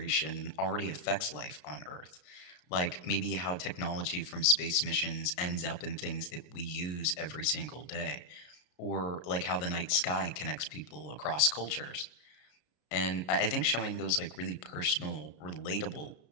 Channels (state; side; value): late; right; 33 ms